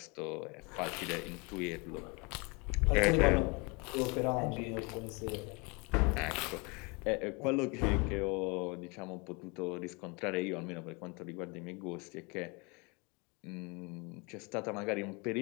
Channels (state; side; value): quieter; right; 29.6 dB